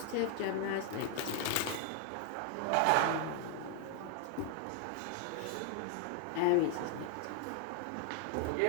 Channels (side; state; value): both; different; correlation 0.00